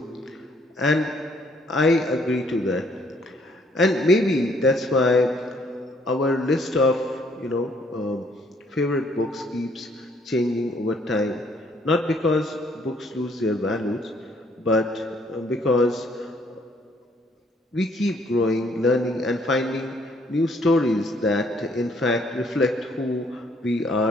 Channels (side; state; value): both; normal; correlation 0.65